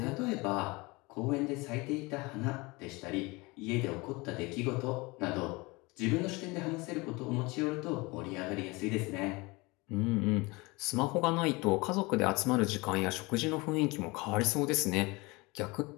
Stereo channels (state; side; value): quieter; right; 24.6 dB